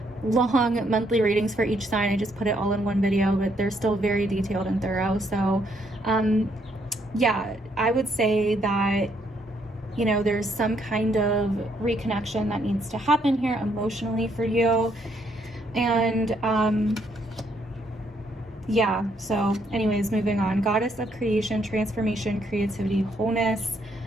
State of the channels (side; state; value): both; normal; correlation 0.72